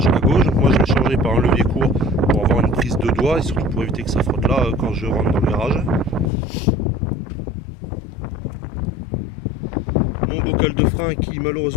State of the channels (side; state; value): right; drops out; at 6.3 s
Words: à gauche. Moi je vais le changer par un levier court pour avoir une prise de doigt et surtout pour éviter que ça frotte là quand je rentre dans le garage. Mon bocal de frein qui